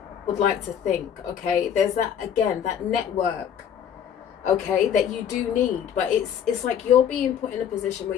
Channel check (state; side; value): quieter; right; 8.7 dB